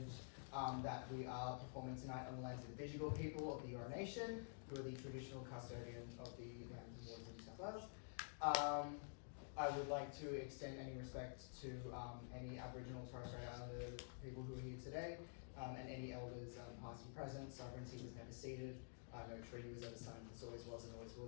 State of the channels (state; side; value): silent; right; digital silence